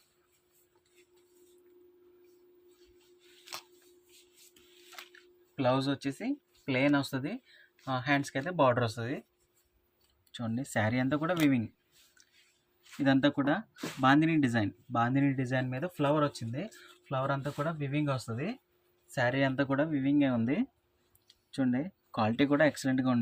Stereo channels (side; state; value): both; identical; correlation 1.00